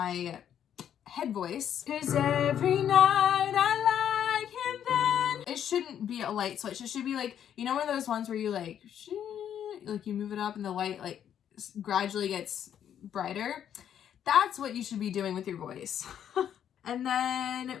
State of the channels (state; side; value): quieter; right; 9.5 dB